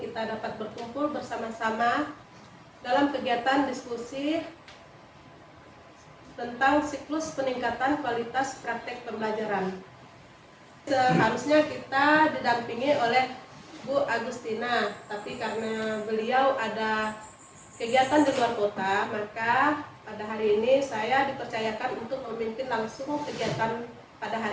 kita dapat berkumpul bersama-sama dalam kegiatan diskusi tentang siklus peningkatan kualitas praktek pembelajaran. Seharusnya kita didampingi oleh Bu Agustina, tapi karena beliau ada kegiatan di luar kota, maka pada hari ini saya dipercayakan untuk memimpin langsung kegiatan pada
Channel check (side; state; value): both; identical; correlation 1.00